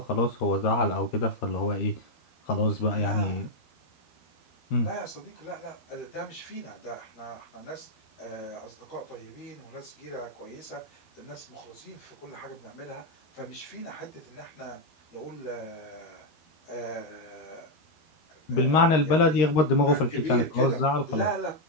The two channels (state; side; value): late; right; 13 ms